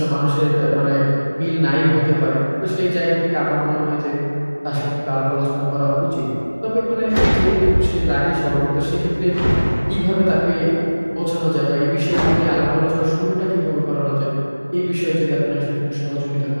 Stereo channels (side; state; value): both; inverted; correlation -1.00